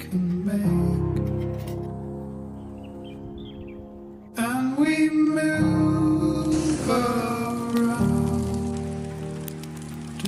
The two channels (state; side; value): identical; both; correlation 1.00